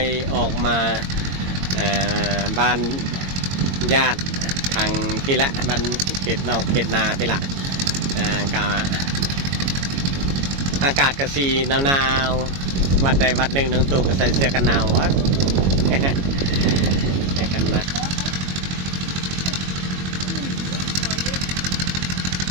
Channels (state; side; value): late; left; 22 ms